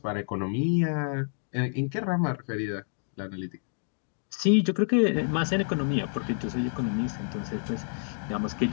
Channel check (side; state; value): right; silent; 59 dB below the other